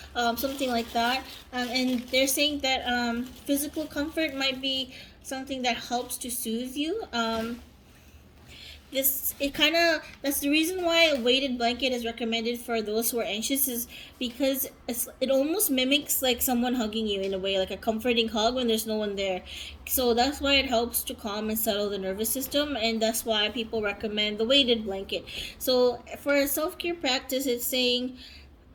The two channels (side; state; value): both; identical; correlation 1.00